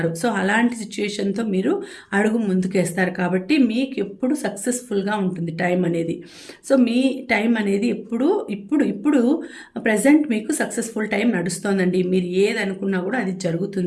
సో అలాంటి సిచ్యుయేషన్తో మీరు అడుగు ముందుకేస్తారు. కాబట్టి మీకు ఎప్పుడు సక్సెస్ఫుల్గా ఉంటుంది టైం అనేది. సో మీ టైం అనేది ఇప్పుడు ప్రజెంట్ మీకు సక్సెస్ఫుల్ టైం నడుస్తోందండి. మీరు ఏది అనుకున్నా కూడా అది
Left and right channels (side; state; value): both; identical; correlation 1.00